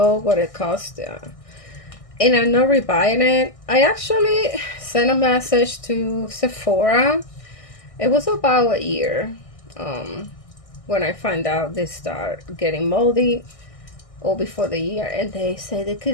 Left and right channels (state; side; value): late; right; 1.6 ms